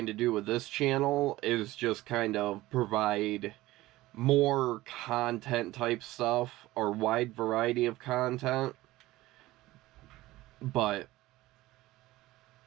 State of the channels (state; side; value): quieter; left; 17.7 dB